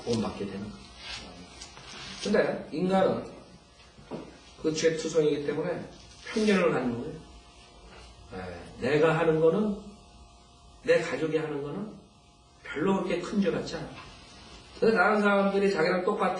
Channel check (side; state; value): both; identical; correlation 1.00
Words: 되는 거예요. 근데 인간은 그 죄투성이기 때문에 편견을 갖는 거예요. 내가 하는 거는 내 가족이 하는 거는 별로 그렇게 큰 죄 같지 않아. 근데 다른 사람들이 자기랑